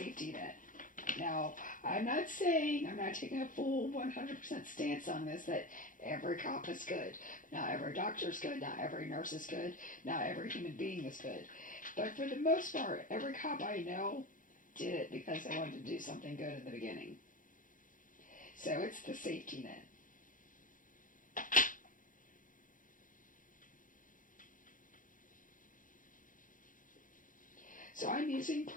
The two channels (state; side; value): late; right; 0.39 ms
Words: net. Now, I'm not taking a full 100% stance on this, that every cop is good. Not every doctor is good. Not every nurse is good. Not every human being is good. But for the most part, every cop I know did it because they wanted to do something good in the beginning. So it's the safety net. So I'm using